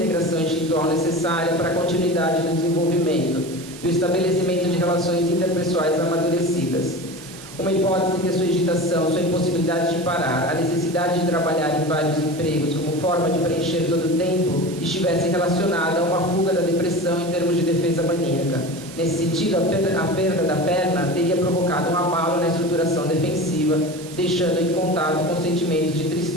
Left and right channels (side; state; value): right; noise; hiss, 16 dB below the sound